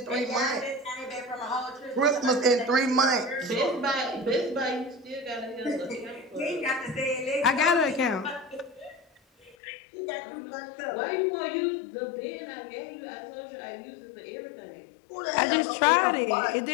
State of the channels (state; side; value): drops out; right; at 9.6 s